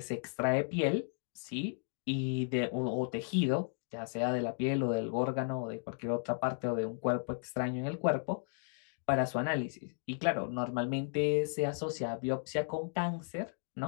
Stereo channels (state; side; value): silent; right; digital silence